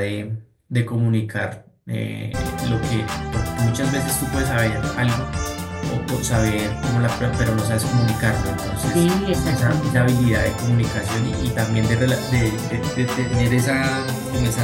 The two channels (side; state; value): both; identical; correlation 1.00